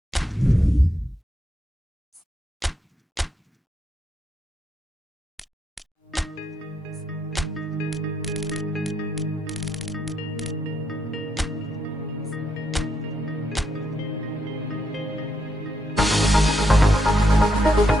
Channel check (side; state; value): both; normal; correlation 0.79